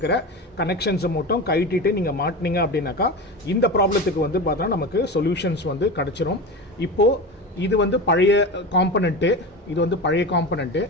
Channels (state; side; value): normal; both; correlation 0.25